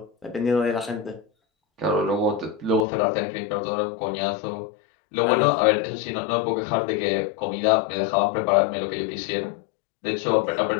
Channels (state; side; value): drops out; right; at 2.9 s